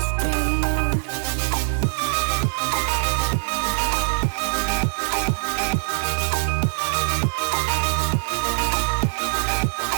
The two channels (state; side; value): silent; left; digital silence